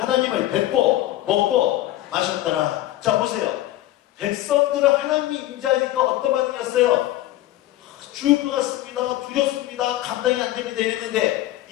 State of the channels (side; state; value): right; quieter; 15.2 dB